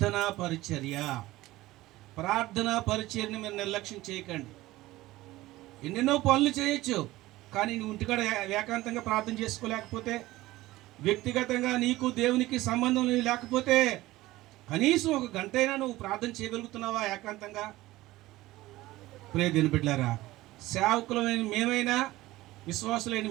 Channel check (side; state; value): left; quieter; 17.6 dB